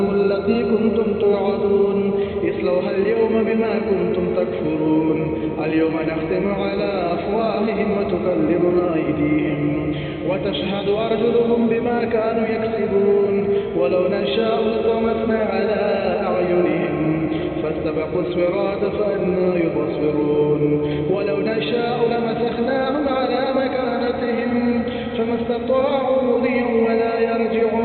التي كنتم توعدون اصلوها اليوم بما كنتم تكفرون اليوم نختم على أفواههم وتكلمنا أيديهم وتشهد أرجلهم بما كانوا يكسبون ولو نشاء لطمسنا على أعينهم فاستبقوا الصراط فأنى يبصرون ولو نشاء لمسخناهم على مكانتهم فما استطاعوا مضيا ولا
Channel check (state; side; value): identical; both; correlation 1.00